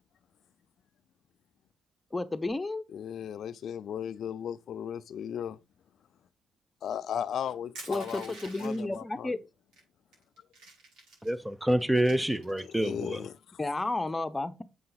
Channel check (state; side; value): normal; both; correlation 0.91